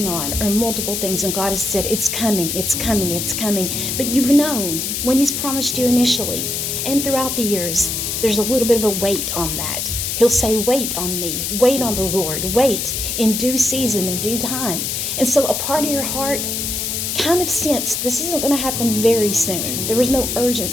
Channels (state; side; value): noise; left; hiss, 2 dB below the sound